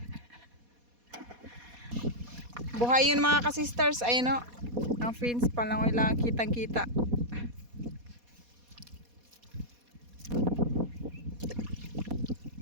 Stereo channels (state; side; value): late; left; 4.2 ms